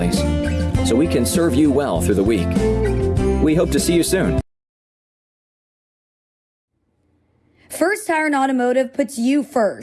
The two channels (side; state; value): both; identical; correlation 1.00